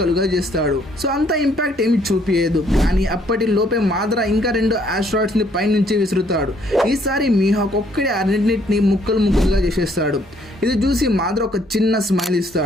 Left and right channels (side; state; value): both; normal; correlation 0.66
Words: చేస్తాడు. సో అంత ఇంపాక్ట్ ఏమి చూపించదు, కానీ అప్పటి లోపే మాదర ఇంకా 2 ఆస్టరాయిడ్స్ ని పై నుంచి విసురుతాడు. ఈసారి మీహాక్ ఒక్కడే అన్నింటిని ముక్కలుగా చేసేస్తాడు. ఇది చూసి మాదర ఒక చిన్న స్మైల్